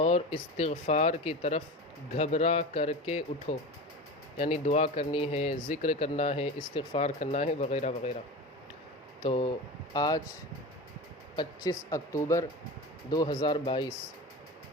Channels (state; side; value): normal; both; correlation 0.29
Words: استغفار کی طرف گھبرا کر کے اٹھو، یعنی دعا کرنی ہے، ذکر کرنا ہے، استغفار کرنا ہے وغیرہ وغیرہ۔ تو آج 25 اکتوبر 2022